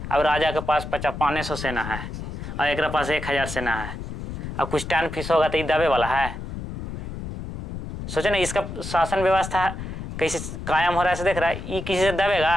अब राजा के पास 500 सेना है और एक पास 1000 सेना है। अब कुछ टर्न फीस होगा तो ये दबे वाला है? सोचे ना, इसका शासन व्यवस्था कैसे कायम हो रहा है, से देख रहा है, ये किसी से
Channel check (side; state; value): left; noise; rumble, 8 dB below the sound